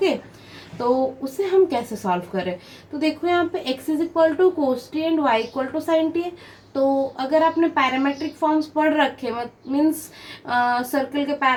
तो उसे हम कैसे सॉल्व करें? तो देखो यहाँ पे x is equal to cos T and y equal to sine T है। तो अगर आपने पैरामेट्रिक फॉर्म्स पढ़ रखे, मीन्स सर्कल के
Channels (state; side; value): identical; both; correlation 1.00